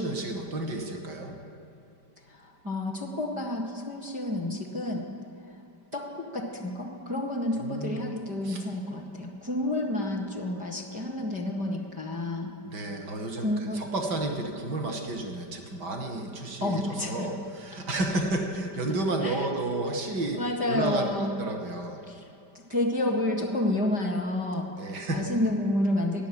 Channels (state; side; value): late; left; 5.1 ms